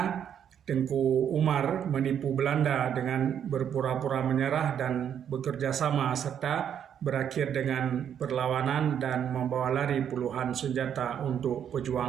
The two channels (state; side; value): quieter; left; 8.9 dB